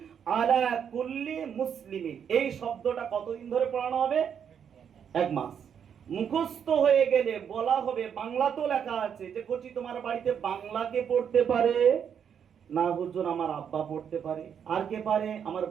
আলা কুল্লি মুসলিমিন, এই শব্দটা কতদিন ধরে পড়ানো হবে? 1 মাস। মুখস্থ হয়ে গেলে বলা হবে, বাংলা তো লেখা আছে যে কোচি তোমার বাড়িতে বাংলাকে পড়তে পারে না? হুজুর আমার আব্বা পড়তে পারে। আর কে পারে? আমার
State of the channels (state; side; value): quieter; left; 7.9 dB